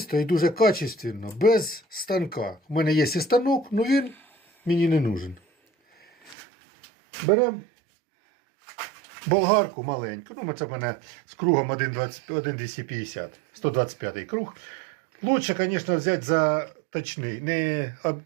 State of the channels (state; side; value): drops out; left; at 6.4 s